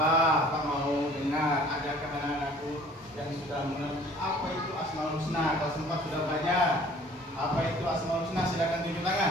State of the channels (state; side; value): normal; both; correlation 0.52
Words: Pak mau dengar, adakah anak-anakku yang sudah mengerti apa itu Asmaul Husna? Kalau sempat sudah belajar apa itu Asmaul Husna, silakan tunjuk